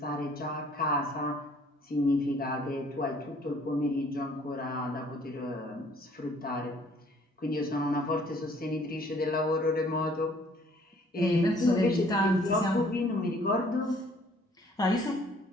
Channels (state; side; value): normal; both; correlation 0.59